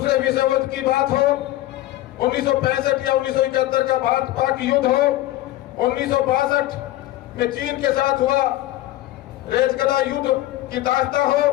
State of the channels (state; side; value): quieter; right; 15.8 dB